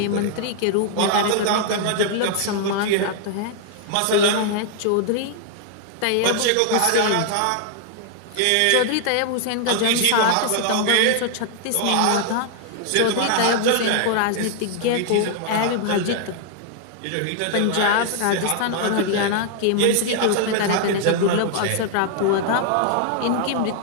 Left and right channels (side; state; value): both; different; correlation 0.00